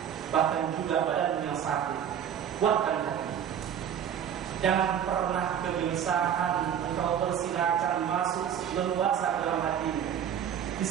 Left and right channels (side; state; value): left; quieter; 9.0 dB